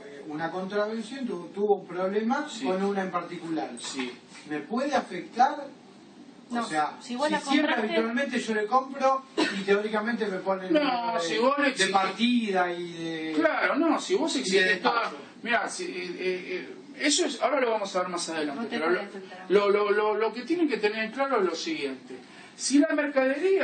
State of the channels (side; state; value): both; identical; correlation 1.00